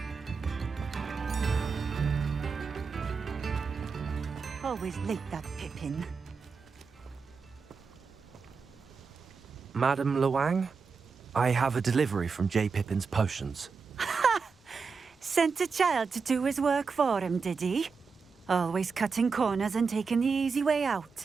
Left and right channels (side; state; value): left; quieter; 5.1 dB